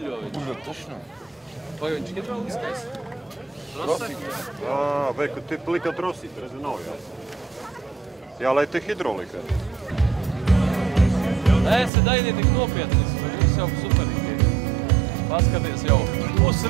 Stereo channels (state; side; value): drops out; left; at 11.9 s